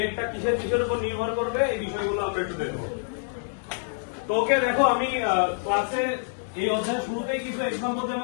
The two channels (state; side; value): silent; right; digital silence